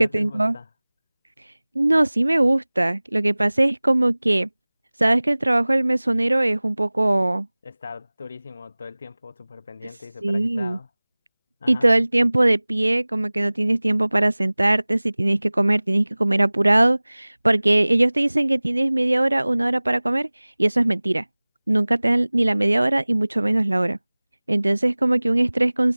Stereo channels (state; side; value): inverted; both; correlation -1.00